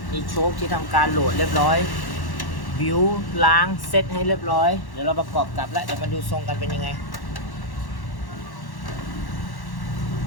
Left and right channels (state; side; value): late; right; 1.1 ms